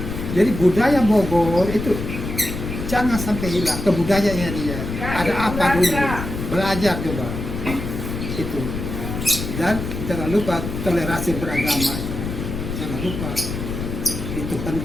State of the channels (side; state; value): left; noise; rumble, 6 dB below the sound